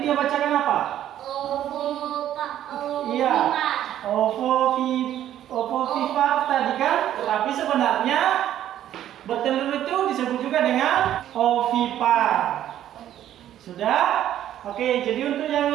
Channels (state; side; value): quieter; left; 11.6 dB